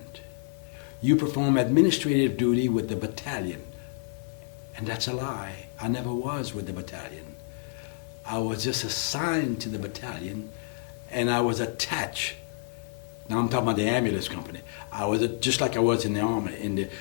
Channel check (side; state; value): right; silent; 59 dB below the other